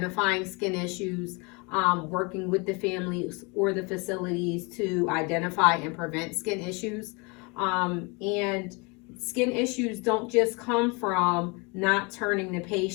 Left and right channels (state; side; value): quieter; right; 28.7 dB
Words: skin issues, working with the families or the facilities to identify and prevent skin issues. And skin issues don't just come from not turning the